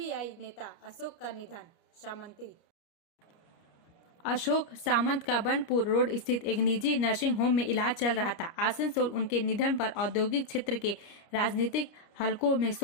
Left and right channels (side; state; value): right; late; 29 ms